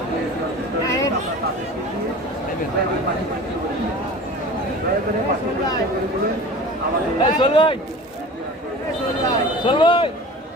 এই চল ভাই, চল ভাই।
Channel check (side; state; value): both; normal; correlation 0.38